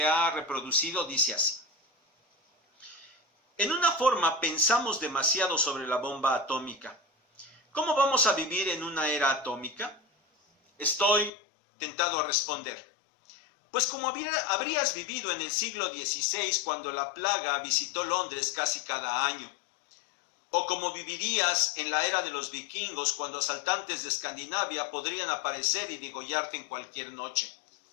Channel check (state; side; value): drops out; right; at 11.3 s